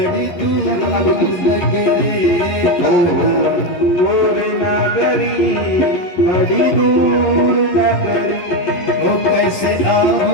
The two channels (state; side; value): late; right; 11 ms